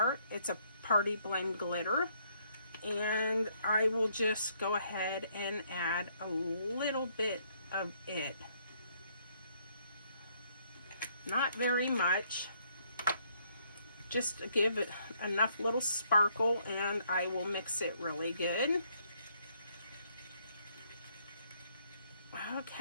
It's a party blend glitter. And I will just go ahead and add a little bit of it. Not very much. Just to give it enough little sparkle, and I will mix it really good.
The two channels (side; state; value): both; inverted; correlation -0.68